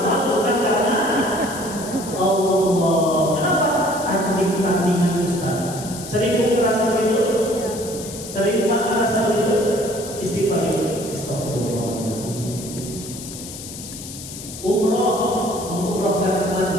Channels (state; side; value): noise; left; hiss, 12 dB below the sound